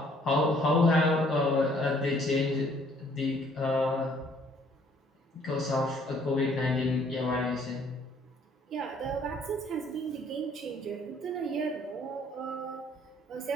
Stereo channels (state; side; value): normal; both; correlation 0.61